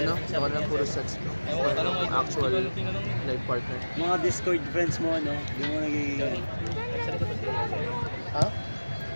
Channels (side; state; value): both; inverted; correlation -1.00